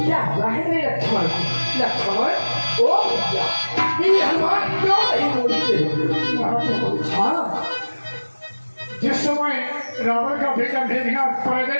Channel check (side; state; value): both; inverted; correlation -1.00